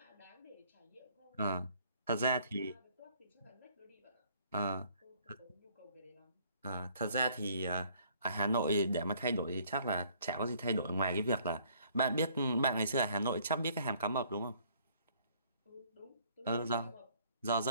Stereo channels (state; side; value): inverted; both; correlation -0.61